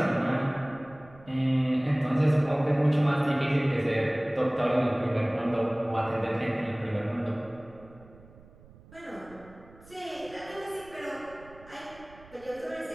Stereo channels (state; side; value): noise; right; rumble, 23 dB below the sound